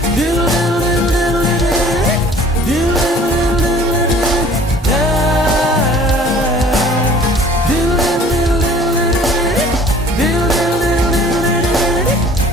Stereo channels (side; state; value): both; normal; correlation 0.51